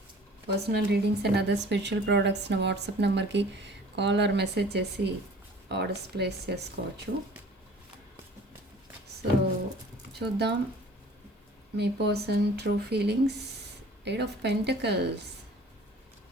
personal readings and other spiritual products నా వాట్సాప్ నెంబర్కి కాల్ ఆర్ మెసేజ్ చేసి ఆర్డర్స్ ప్లేస్ చేసుకోవచ్చు. సో చూద్దాం మీ person true feelings. 8 of Pentacles,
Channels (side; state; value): both; normal; correlation 0.48